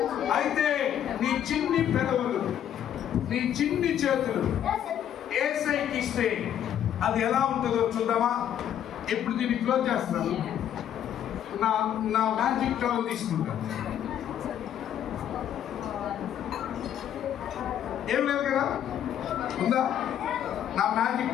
అయితే నీ చిన్ని పెదవులు, నీ చిన్ని చేతులు యేసయ్యకి ఇస్తే అది ఎలా ఉంటుందో చూద్దామా? ఇప్పుడు దీన్ని క్లోజ్ చేస్తున్నాను. నా మ్యాజిక్ టవల్ తీసుకుంటాను. ఏం లేదు కదా, ఉందా? నా మ్యాజిక్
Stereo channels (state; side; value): quieter; right; 10.1 dB